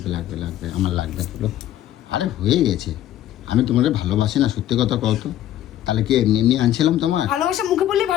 লাগবে লাগবে আমার লাগবে বলো। আরে হয়ে গেছে, আমি তোমাকে ভালোবাসি না, সত্যি কথা কও তো। তাহলে কি এমনি এমনি আনছিলাম তোমার? ভালোবাসা মুখে বললে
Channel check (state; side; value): quieter; right; 12.5 dB